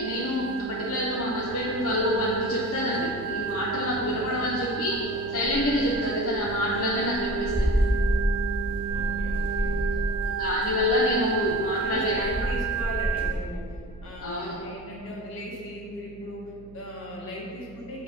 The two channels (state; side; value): noise; right; hum, 21 dB below the sound